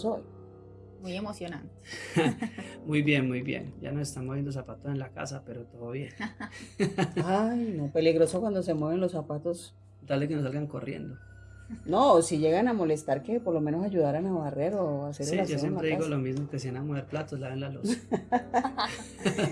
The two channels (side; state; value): both; identical; correlation 1.00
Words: hoy? Muy emocionante. Muy bien. Ya nos están moviendo zapatos en la casa, pero todo bien. Ay, no, peligroso cuando se mueven los zapatos. Dale que nos salgan corriendo. No, si llegan a molestar, que por lo menos ayudaran a barrer o a hacer el aseo. Sí, yo siempre digo lo mismo, que si van a mover platos, laven la loza.